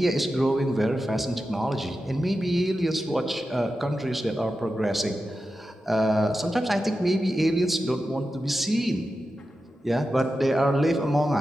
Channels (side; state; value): both; normal; correlation 0.91